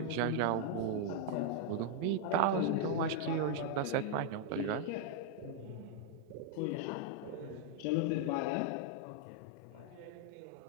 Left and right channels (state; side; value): different; both; correlation 0.00